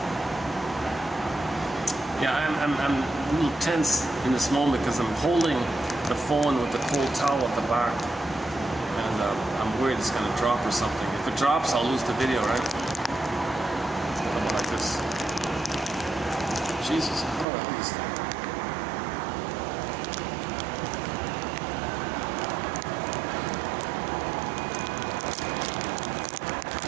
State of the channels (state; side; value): drops out; left; at 17.4 s